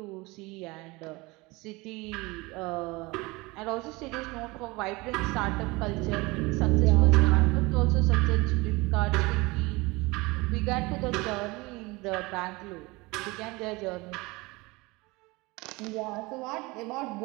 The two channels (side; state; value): left; quieter; 23.6 dB